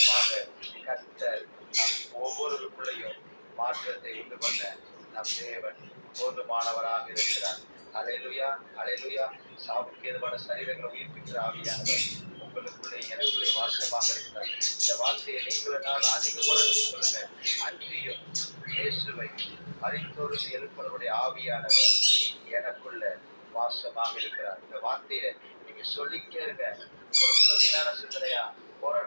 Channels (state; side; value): inverted; both; correlation -1.00